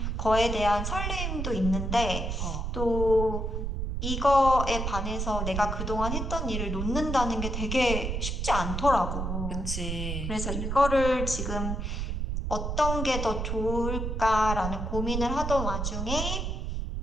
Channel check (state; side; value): noise; right; rumble, 2 dB below the sound